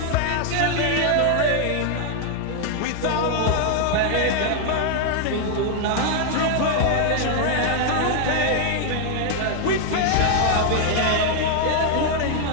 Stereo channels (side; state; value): both; different; correlation 0.00